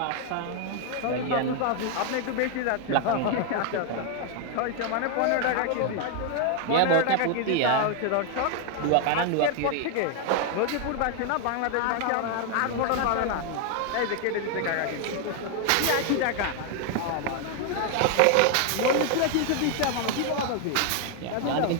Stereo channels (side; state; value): both; different; correlation 0.00